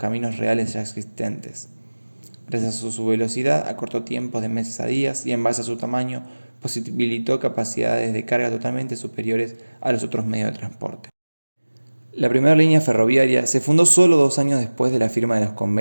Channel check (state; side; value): inverted; both; correlation -1.00